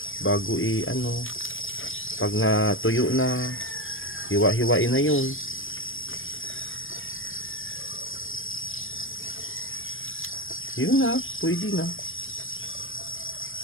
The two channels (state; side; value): late; right; 0.59 ms